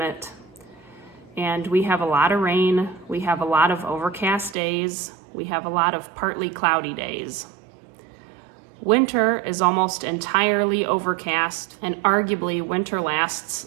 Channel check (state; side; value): drops out; left; at 4.5 s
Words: and we have a lot of rain, we have a lot of overcast days, we have a lot of partly cloudy days. Winter is almost entirely overcast, and arguably winter